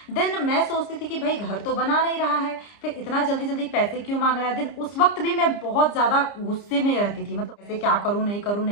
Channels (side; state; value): right; late; 30 ms